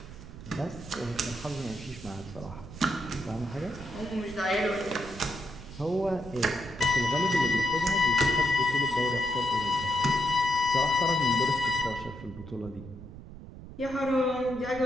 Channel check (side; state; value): right; noise; rumble, 14 dB below the sound